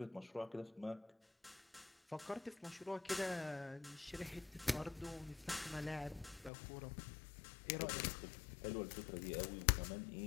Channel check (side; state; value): right; drops out; at 6.5 s